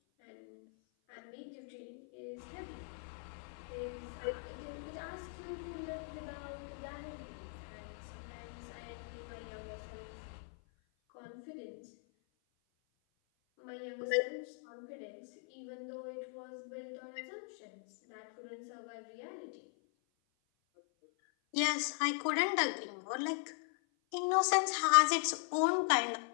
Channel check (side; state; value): right; silent; 51 dB below the other